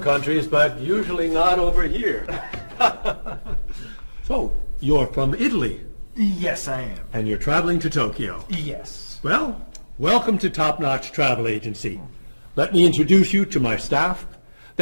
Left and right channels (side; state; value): both; inverted; correlation -1.00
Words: countries, but usually not over here. So, you're from Italy, Yes, I am. and you're traveling to Tokyo. Yes. Well, welcome to Top Notch Travel Agency. Let me introduce you to my staff,